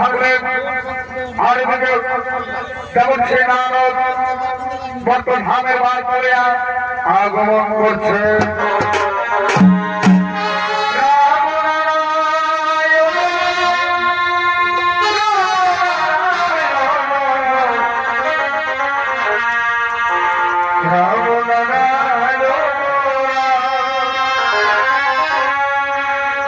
আর এদিকে যেমন সে নারদ বর্ত ধামের বার করে আগমন করছে।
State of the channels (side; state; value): both; identical; correlation 1.00